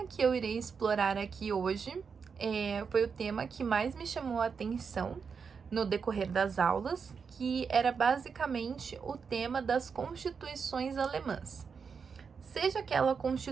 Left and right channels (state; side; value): quieter; left; 5.9 dB